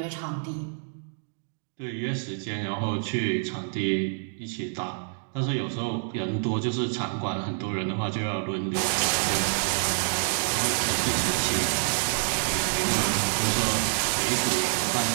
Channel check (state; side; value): silent; left; digital silence